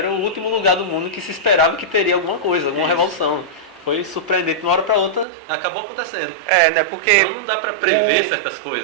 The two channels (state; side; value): drops out; left; at 5.2 s